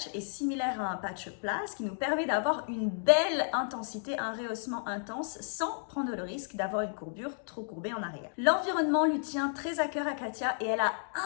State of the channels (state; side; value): silent; right; digital silence